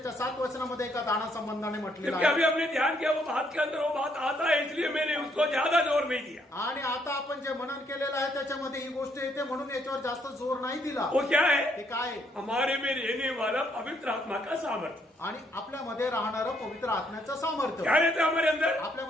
7 वचनामध्ये एका दाना संबंधाने म्हटलेलं क्योंकि अभी आहे. हमने ध्यान किया वो बात के अंदर वो बात आता है, इसलिए मैंने उसको ज्यादा जोर नहीं दिया. आणि आता आपण जे मनन केलेलं आहे त्याच्यामध्ये ही गोष्ट येते म्हणून याच्यावर जास्त जोर नाही दिला. वो क्या है? ते काय आहे? हमारे में रहने वाला पवित्र आत्मा का सामर्थ्य. आणि आपल्यामध्ये राहणारं पवित्र आत्म्याचं सामर्थ्य. क्या रहता है हमारे अंदर?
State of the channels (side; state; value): both; normal; correlation 0.71